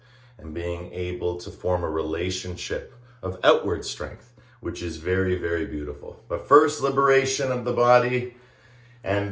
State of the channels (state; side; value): identical; both; correlation 1.00